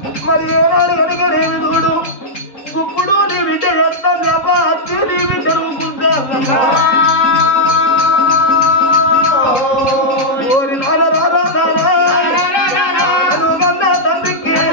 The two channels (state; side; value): late; right; 3.7 ms